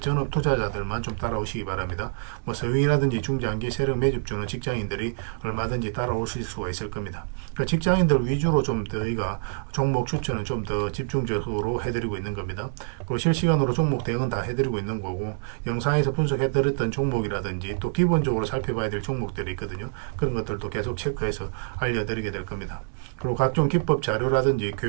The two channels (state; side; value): silent; left; digital silence